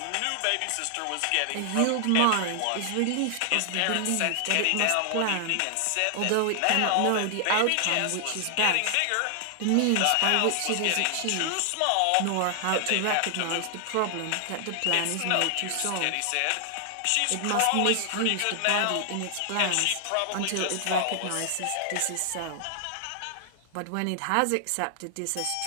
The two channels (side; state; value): both; different; correlation 0.00